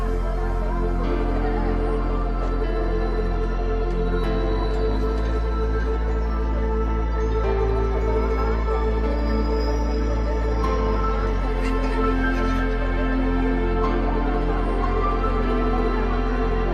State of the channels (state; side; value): identical; both; correlation 1.00